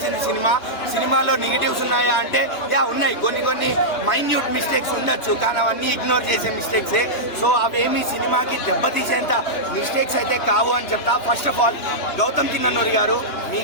సినిమా. సినిమాలో నెగిటివ్స్ ఉన్నాయా అంటే ఉన్నాయి, కొన్ని మైన్యూట్ మిస్టేక్స్ ఉండొచ్చు, కానీ అవన్నీ ఇగ్నోర్ చేసే మిస్టేక్సే. సో అవేమి సినిమాకి దెబ్బతీసేంత మిస్టేక్స్ అయితే కావు అని చెప్తా. First of all Gautam Chinnanuri గారు,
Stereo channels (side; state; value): right; late; 3.3 ms